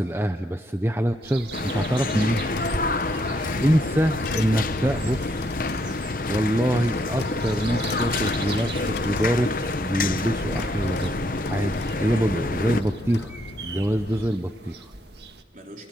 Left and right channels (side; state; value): both; normal; correlation 0.74